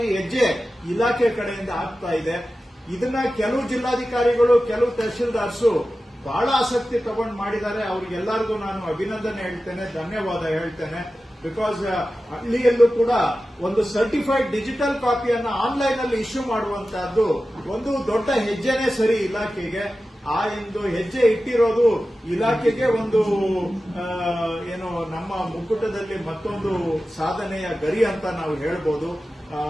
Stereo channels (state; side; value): normal; both; correlation 0.94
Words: ಹೆಜ್ಜೆ ಇಲಾಖೆ ಕಡೆಯಿಂದ ಆಗ್ತಾ ಇದೆ. ಇದನ್ನ ಕೆಲವು ಜಿಲ್ಲಾಧಿಕಾರಿಗಳು ಕೆಲವು ತಹಶೀಲ್ದಾರ್ಸು ಬಹಳ ಆಸಕ್ತಿ ತಗೊಂಡು ಮಾಡಿದ್ದಾರೆ. ಅವ್ರಿಗೆಲ್ಲರಿಗೂ ನಾನು ಅಭಿನಂದನೆ ಹೇಳ್ತೇನೆ, ಧನ್ಯವಾದ ಹೇಳ್ತೇನೆ. ಬಿಕಾಸ್ ಹಳ್ಳಿಯಲ್ಲೂ ಕೂಡ ಒಂದು ಸರ್ಟಿಫೈಡ್ ಡಿಜಿಟಲ್ ಕಾಪಿಯನ್ನ ಆನ್ಲೈನ್ ಅಲ್ಲಿ ಇಶ್ಯೂ ಮಾಡುವಂತಹದ್ದು ಒಂದು ದೊಡ್ಡ ಹೆಜ್ಜೆನೇ ಸರಿ ಇಲಾಖೆಗೆ. ಆ ಒಂದು ಹೆಜ್ಜೆ ಇಟ್ಟಿರೋದು ಇಲಾಖೆಗೆ ಒಂದು ಏನು ನಮ್ಮ ಮುಕ್ಕುಟದಲ್ಲಿ ಮತ್ತೊಂದು ಸಾಧನೆಯ ಗರಿ ಅಂತ ನಾವು ಹೇಳ್ಬೋದು.